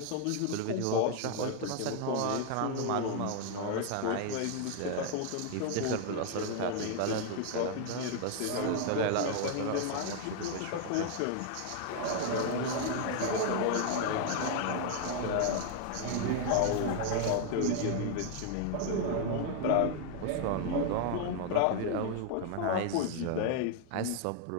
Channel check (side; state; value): both; different; correlation 0.00